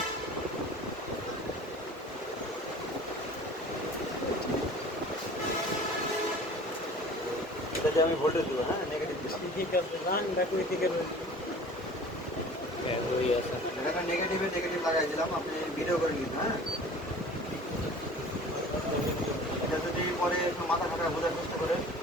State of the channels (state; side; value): normal; both; correlation 0.44